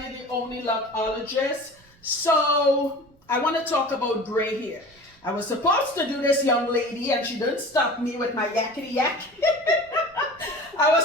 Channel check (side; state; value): right; noise; rumble, 30 dB below the sound